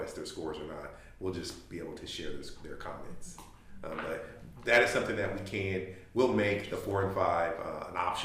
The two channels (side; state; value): both; identical; correlation 1.00